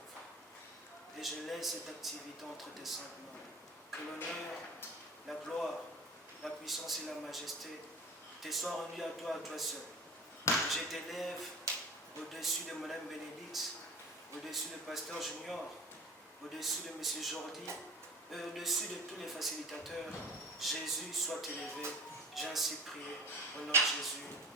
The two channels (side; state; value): both; normal; correlation 0.40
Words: Et je laisse cette activité entre tes saintes mains. Que l'honneur, la gloire, la puissance et la majesté te soient rendues à toi seul. Je t'élève au-dessus de Madame Bénédicte, au-dessus de Pasteur Junior, au-dessus de M. Jordi, et au-dessus de tous les facilitateurs. Jésus soit élevé. J'ai ainsi prié au nom de Jésus.